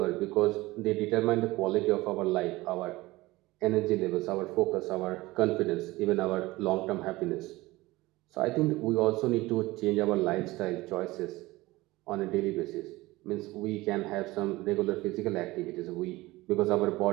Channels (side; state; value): left; quieter; 19.7 dB